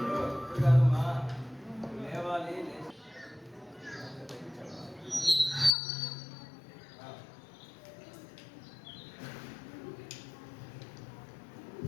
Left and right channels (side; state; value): right; drops out; at 5.8 s